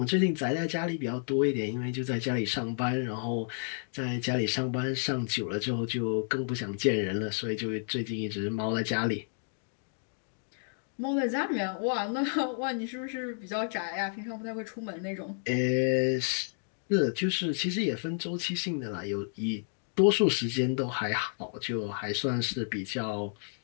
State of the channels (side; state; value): right; silent; digital silence